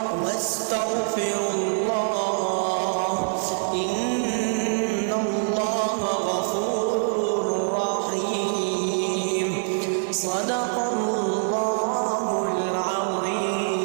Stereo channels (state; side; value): silent; left; 62 dB below the other